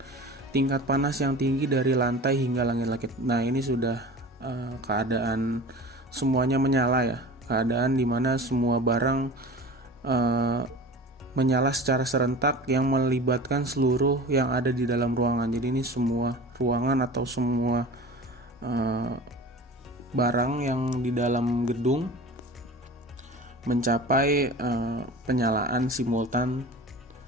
Tingkat panas yang tinggi dari lantai hingga langit-langit. Nah, ini sudah keadaan semuanya menyala ya. Keadaan di mana semua barang menyala secara serentak yang melibatkan seluruh yang ada di dalam ruangan. Jadi ini semua ruangan atau semua barang yang di dalam gedung mencapai penyalaan simultan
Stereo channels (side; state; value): both; normal; correlation 0.37